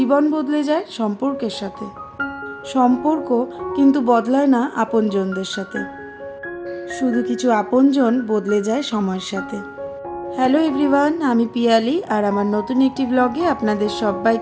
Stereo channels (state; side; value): identical; both; correlation 1.00